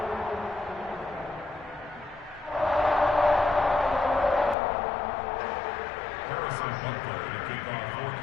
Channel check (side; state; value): right; drops out; at 4.5 s